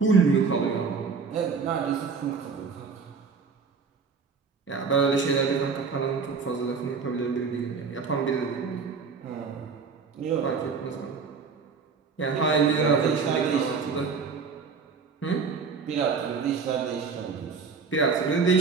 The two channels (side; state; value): left; quieter; 5.3 dB